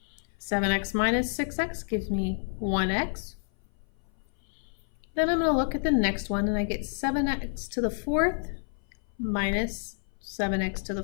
7x minus 6x gives me 1x. Then I'm going to look at the next one, and I get 7x to the fourth minus 7x to the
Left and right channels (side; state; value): right; silent; 56 dB below the other